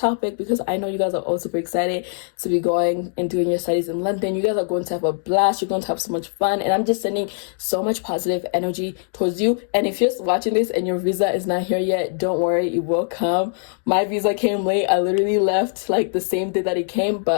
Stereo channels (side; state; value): right; silent; digital silence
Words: because I know you guys are all super excited to be going and doing your studies in London. You guys are going to have a blast. You're going to have so much fun, and I'm just sending so much positive energy towards you. And if you're watching this and your visa is not here yet, don't worry, it will come. My visa came late. I literally left like the same day that it came,